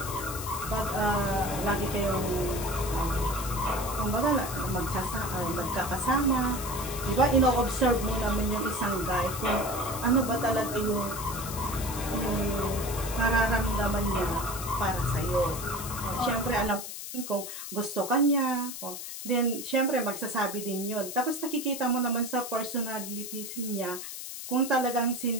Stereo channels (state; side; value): noise; left; hiss, 8 dB below the sound